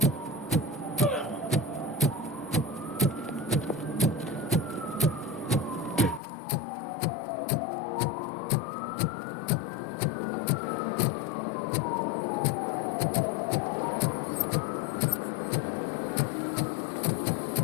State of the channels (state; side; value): drops out; right; at 6.2 s